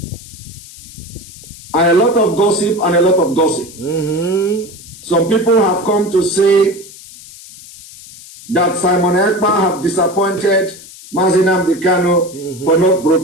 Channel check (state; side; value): noise; left; hiss, 18 dB below the sound